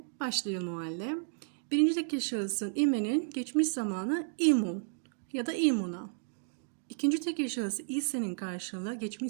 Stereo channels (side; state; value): left; silent; digital silence